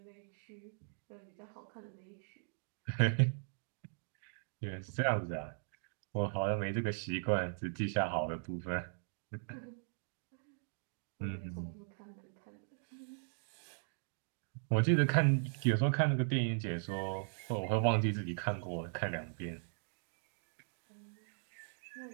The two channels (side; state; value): left; silent; digital silence